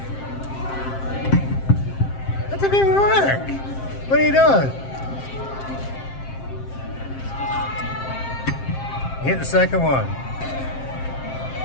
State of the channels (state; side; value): late; right; 7.6 ms